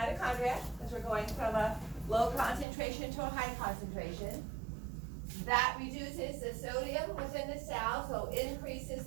because we're going from a low concentration to a high concentration. That reduces the sodium within the cell, so increases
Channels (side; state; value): left; drops out; at 2.7 s